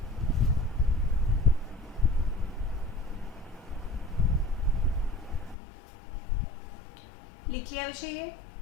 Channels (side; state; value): right; drops out; at 5.6 s